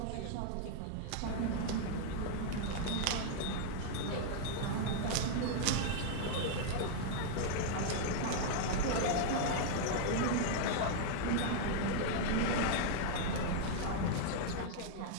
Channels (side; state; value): both; different; correlation -0.01